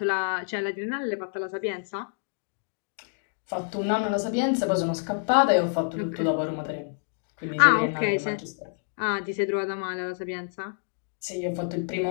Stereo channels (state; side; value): silent; right; digital silence